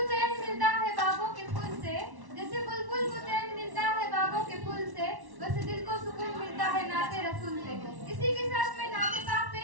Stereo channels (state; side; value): late; left; 1.1 ms